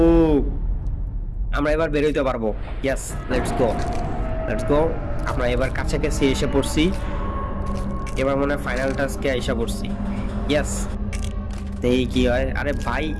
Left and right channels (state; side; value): identical; both; correlation 1.00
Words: আমরা এবার বের হইতে পারবো। ইয়েস, লেটস গো, লেটস গো। আমরা এবার কাছাকাছি এসে পড়ছি, এবার মনে হয় ফাইনাল টাস্কে এসে পড়ছি। ইয়েস, এই কি হয়? আরে ভাই